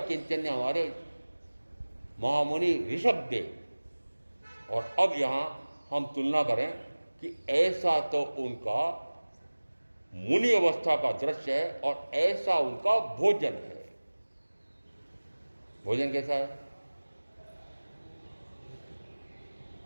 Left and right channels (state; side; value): inverted; both; correlation -1.00